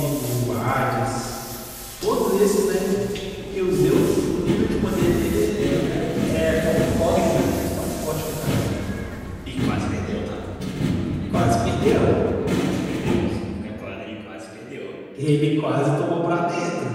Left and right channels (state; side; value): identical; both; correlation 1.00